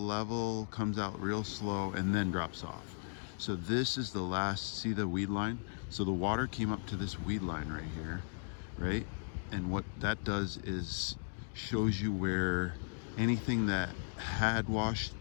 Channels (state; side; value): silent; right; digital silence